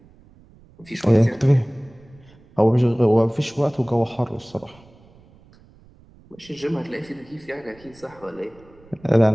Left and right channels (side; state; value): right; noise; rumble, 26 dB below the sound